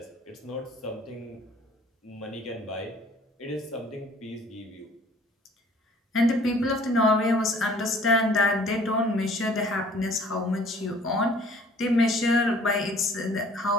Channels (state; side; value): normal; both; correlation 0.54